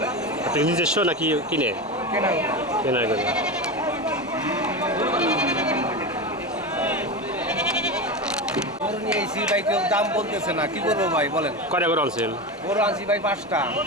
আপনি নিজস্ব নাকি কিনে কেনা গেল গরু নিয়ে এসি ভাই কেউ দাম বলতেছে না কি করবো ভাই বলেন কয়টা করে আনছেন গরু আনছি ভাই 5টা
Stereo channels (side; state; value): both; normal; correlation 0.21